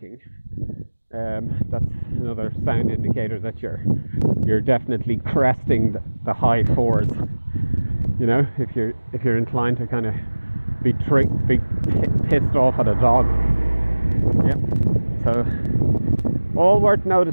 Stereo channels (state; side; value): inverted; both; correlation -1.00